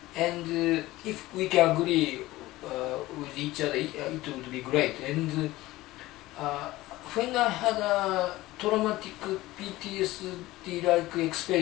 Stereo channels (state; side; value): quieter; right; 17.9 dB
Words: And if we can agree with each other, it would be great. And when I had a traumatic PTSD-like